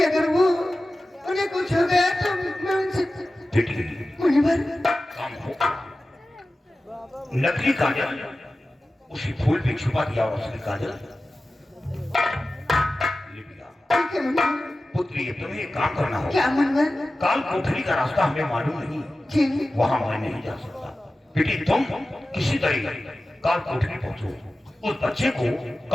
अगर वो उन्हें कुछ हो गया तो मैं उनसे मुनिवर काम हो। नकली काजल उसी फूल पे छुपा दिया और असली काजल ले लिया। ठीक है मुनिवर। पुत्री तुम्हें एक काम करना होगा। क्या मुनिवर? काल कोठरी का रास्ता हमें मालूम नहीं, जी वहां मैं नहीं जा सकता। बेटी तुम किसी तरह काल कोठरी पहुंचो, उस बच्चे को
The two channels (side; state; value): both; normal; correlation 0.95